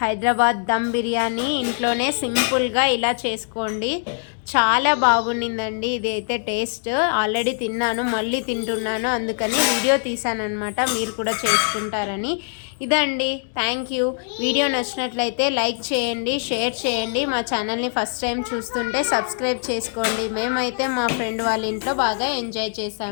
దమ్ బిర్యానీ ఇంట్లోనే సింపుల్గా ఇలా చేసుకోండి, చాలా బాగుండిందండి. ఇది అయితే టేస్ట్ ఆల్రెడీ తిన్నాను, మళ్ళీ తింటున్నాను, అందుకని వీడియో తీసాను అనమాట, మీరు కూడా చేసుకుంటారని. ఇదండి, థ్యాంక్ యూ. వీడియో నచ్చినట్లయితే లైక్ చేయండి, షేర్ చేయండి. మా ఛానల్ని ఫస్ట్ టైం చూస్తుంటే సబ్స్క్రైబ్ చేసుకోండి. మేమైతే మా ఫ్రెండ్ వాళ్ళ ఇంట్లో బాగా ఎంజాయ్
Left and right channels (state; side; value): silent; right; 58 dB below the other